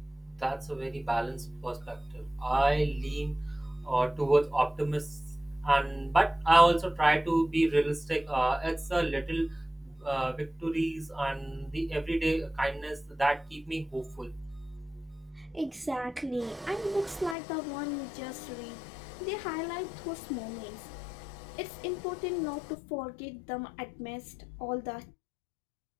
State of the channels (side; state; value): right; drops out; at 17.4 s